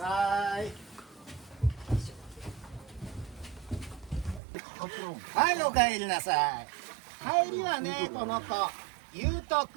い。はい、お帰りなさい。帰りはね、この子、ゆうと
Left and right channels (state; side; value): drops out; left; at 4.4 s